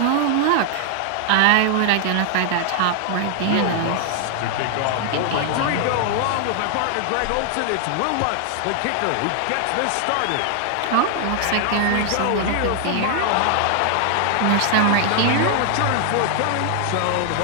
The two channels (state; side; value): different; both; correlation 0.00